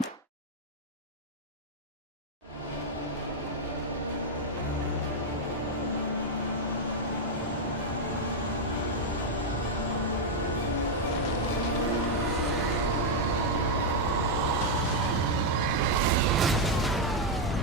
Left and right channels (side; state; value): both; normal; correlation -0.01